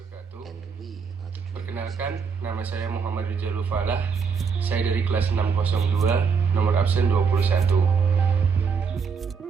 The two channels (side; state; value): left; quieter; 5.9 dB